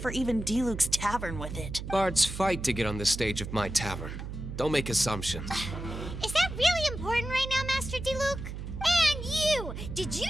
even Diluc's tavern with it. Bards fight to get on the stage of my tavern. Don't make assumptions. Is that really important right now, Master Diluc? And you! Did you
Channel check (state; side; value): noise; right; hum, 8 dB below the sound